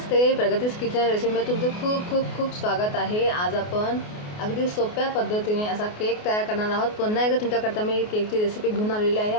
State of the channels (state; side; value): late; right; 28 ms